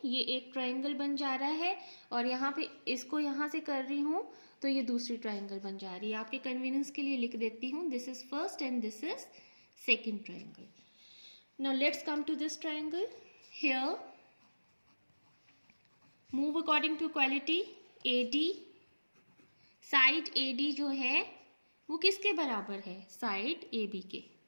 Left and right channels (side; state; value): both; inverted; correlation -1.00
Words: ये एक ट्रायंगल बन जा रहा है और यहाँ पे इसको यहाँ से कर रही हूँ तो ये दूसरी ट्रायंगल बन जा रही है. आपके कन्वीनियंस के लिए लिख देती हूँ, this is first and this is second triangle. Now let's come to this triangle. Here move according to equality. AD, side AD जो है वो किसके बराबर है, साइड AB के,